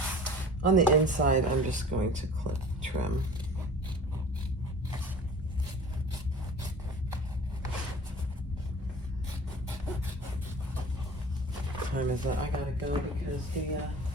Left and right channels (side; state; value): both; normal; correlation 0.42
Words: On the inside, I'm just going to trim. Time is it? I gotta go because the